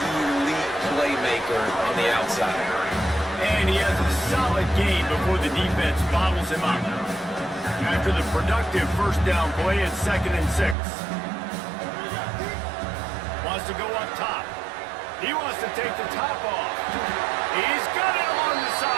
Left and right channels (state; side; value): drops out; left; at 10.8 s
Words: elite playmaker on the outside. And he has a solid game before the defense bottles him up. After the productive 1st down play, it's 2nd and 6. Wants to go up top. He wants to take the top off. He's got it on the